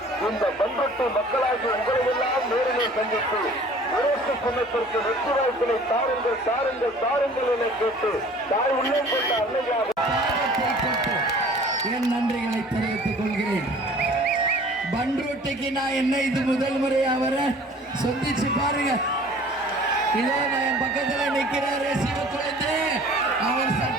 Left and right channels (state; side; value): normal; both; correlation 0.49